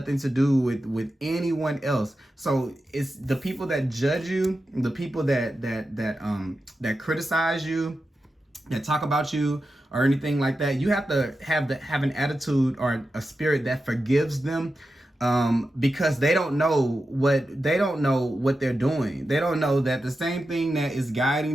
to do with anyone else. So it's the people that judge you, the people that criticize you, that talk about you or anything like that. You have to have an attitude or a spirit that forgives them. Because they don't know what they're doing. They don't know that the same thing that is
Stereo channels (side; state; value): both; normal; correlation 0.90